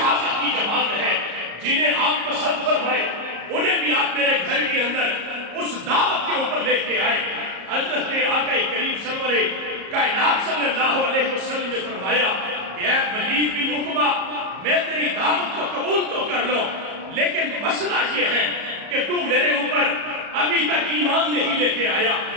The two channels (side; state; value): left; late; 34 ms